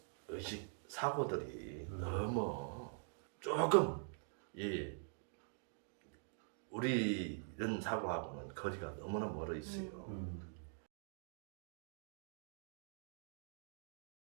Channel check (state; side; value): silent; left; digital silence